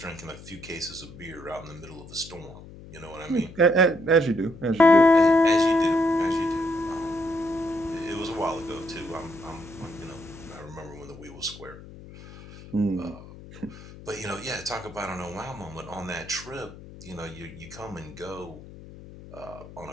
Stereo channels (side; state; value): left; noise; hum, 17 dB below the sound